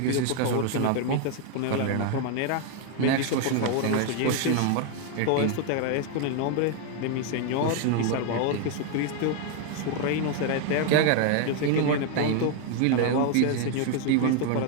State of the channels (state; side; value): different; both; correlation 0.01